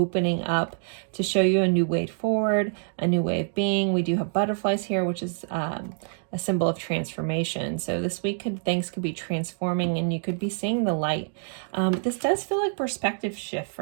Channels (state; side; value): silent; left; digital silence